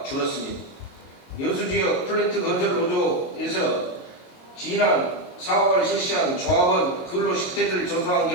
줄었습니다. 여수지역 플랜트 건설 노조에서 지난 4월 실시한 조합원 근로 실태를 조사한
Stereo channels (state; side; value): late; right; 22 ms